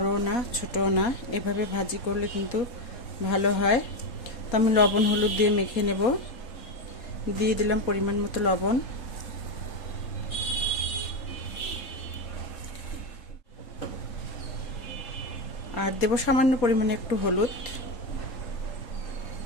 না ছোটও না। এভাবে ভাজি করলে কিন্তু ভালো হয়। তো আমি লবণ হলুদ দিয়ে মেখে নেব। দিয়ে দিলাম পরিমাণ মতো লবণ, আর দেব সামান্য পরিমাণে একটু হলুদ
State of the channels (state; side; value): late; right; 3.8 ms